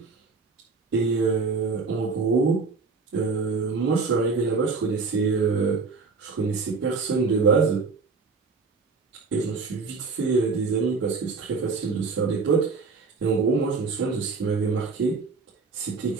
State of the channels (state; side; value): quieter; left; 4.5 dB